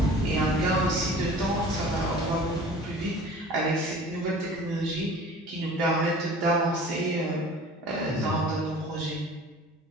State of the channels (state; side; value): normal; both; correlation 0.44